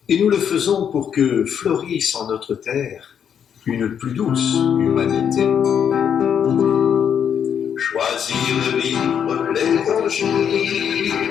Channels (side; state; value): right; quieter; 8.2 dB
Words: Et nous le faisons pour que fleurisse en notre terre une plus douce humanité. Choisir de vivre l'évangile,